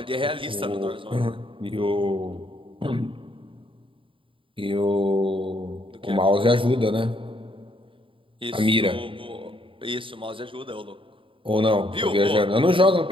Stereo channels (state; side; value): late; left; 0.25 ms